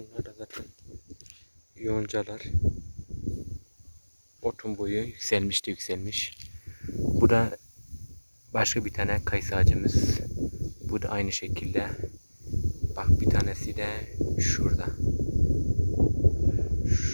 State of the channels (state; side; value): inverted; both; correlation -1.00